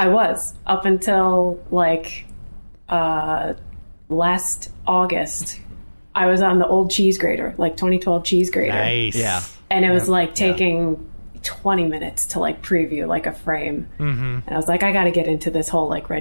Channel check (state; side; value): inverted; both; correlation -1.00